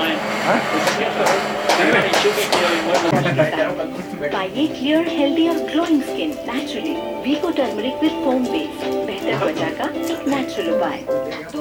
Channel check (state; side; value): identical; both; correlation 1.00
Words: पाइए clear healthy और glowing skin naturally Vicco turmeric with foam base बेहतर त्वचा का natural उपाय।